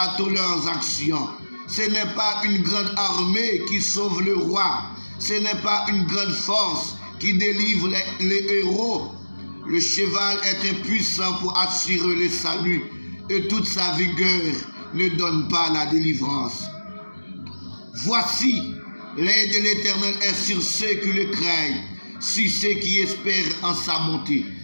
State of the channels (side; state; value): both; inverted; correlation -1.00